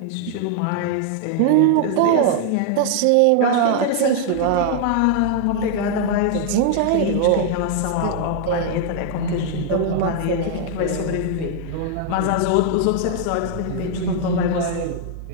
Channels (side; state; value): both; different; correlation 0.00